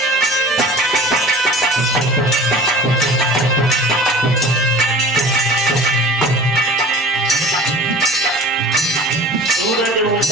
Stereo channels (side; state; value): both; normal; correlation 0.42